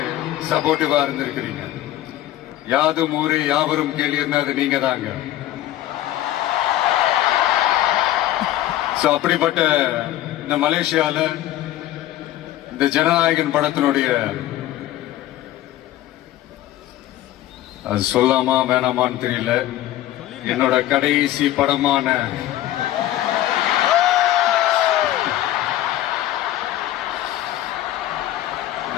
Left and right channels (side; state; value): right; quieter; 13.9 dB